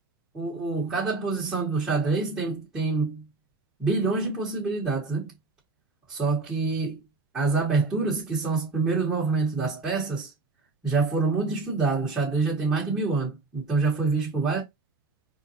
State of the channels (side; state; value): left; quieter; 3.7 dB